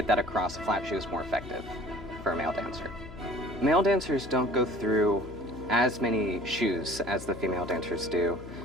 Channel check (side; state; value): left; noise; hum, 14 dB below the sound